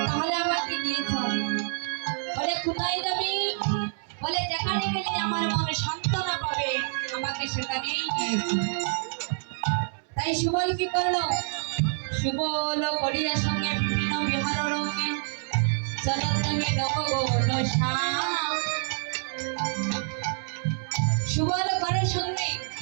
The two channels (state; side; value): silent; left; 59 dB below the other